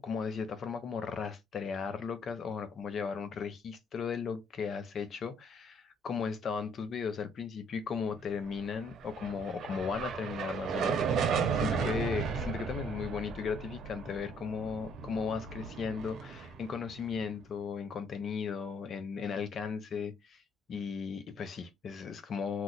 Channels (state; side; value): normal; both; correlation 0.64